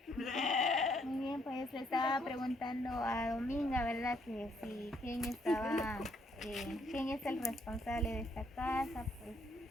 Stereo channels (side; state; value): both; normal; correlation 0.70